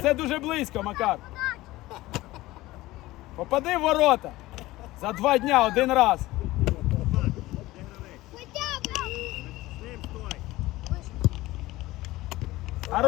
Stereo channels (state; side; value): quieter; right; 18.2 dB